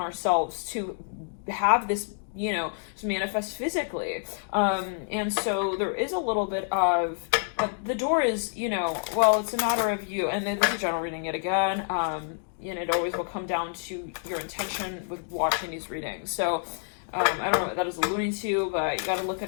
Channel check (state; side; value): silent; right; digital silence